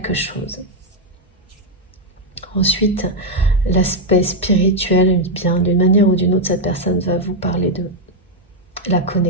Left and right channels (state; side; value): normal; both; correlation 0.01